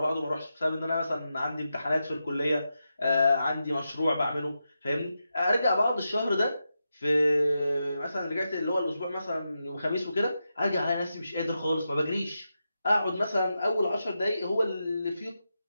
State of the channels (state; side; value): inverted; both; correlation -0.88